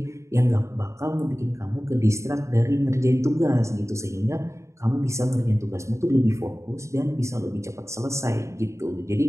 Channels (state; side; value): late; left; 0.14 ms